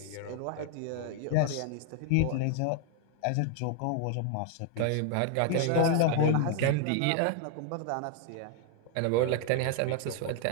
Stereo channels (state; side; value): different; both; correlation 0.00